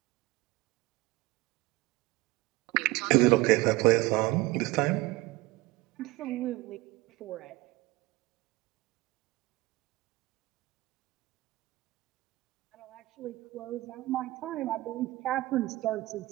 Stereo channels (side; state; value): left; quieter; 20.1 dB